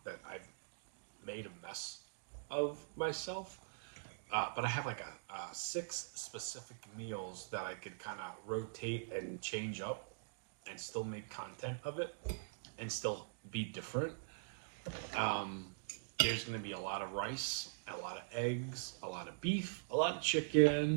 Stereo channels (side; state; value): left; silent; digital silence